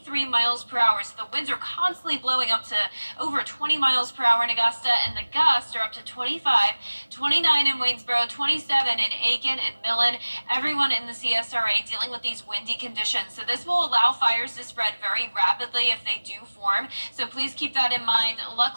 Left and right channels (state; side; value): inverted; both; correlation -1.00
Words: miles per hour. So the winds are constantly blowing up to over 20 miles per hour in Augusta, and the gusts are up to 25, 29 in Waynesboro, 27 in Aiken and Millen. Everyone in the CSRA dealing with these windy conditions. So this will allow fires to spread very rapidly if they do form. So please keep that in mind.